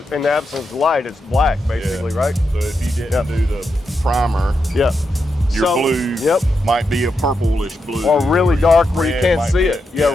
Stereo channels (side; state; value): both; normal; correlation 0.85